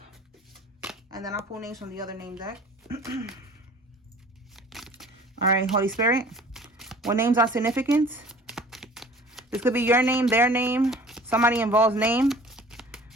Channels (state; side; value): normal; both; correlation 0.47